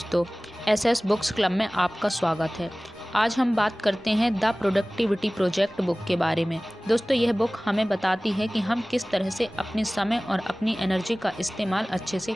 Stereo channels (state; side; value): normal; both; correlation 0.98